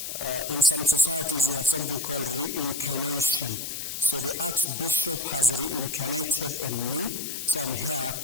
in some societies you have something called reincarnation. So the Archbishop has reincarnated in me, so I'm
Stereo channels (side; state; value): left; noise; hiss, 5 dB below the sound